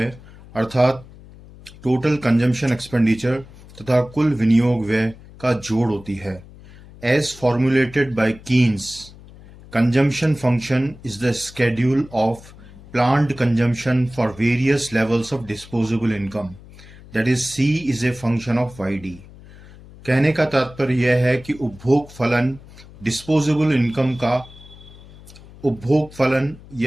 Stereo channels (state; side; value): noise; left; hum, 20 dB below the sound